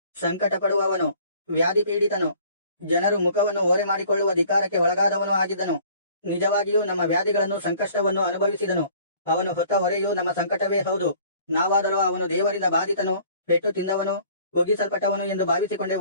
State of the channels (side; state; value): both; inverted; correlation -0.53